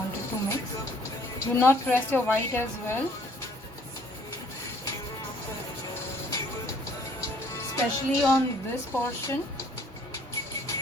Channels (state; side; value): normal; both; correlation 0.60